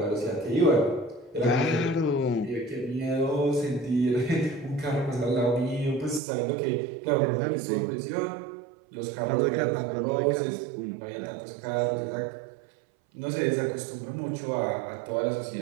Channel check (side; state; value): left; drops out; at 6.2 s